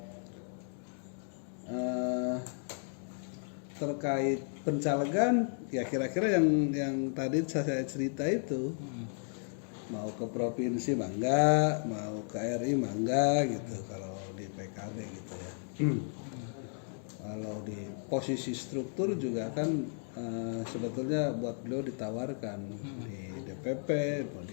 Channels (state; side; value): silent; right; 55 dB below the other